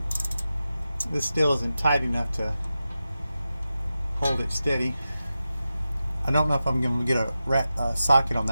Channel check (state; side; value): inverted; both; correlation -0.92